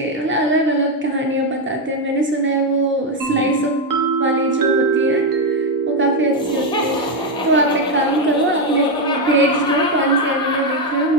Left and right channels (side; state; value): both; normal; correlation 0.05